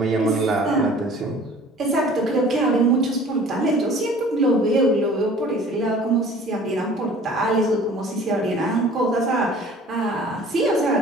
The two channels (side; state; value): both; normal; correlation 0.48